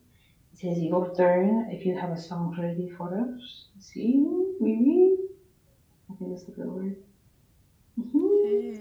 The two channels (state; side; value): identical; both; correlation 1.00